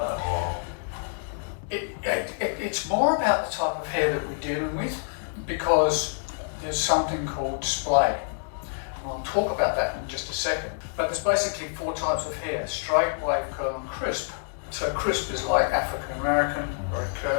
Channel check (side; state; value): right; silent; digital silence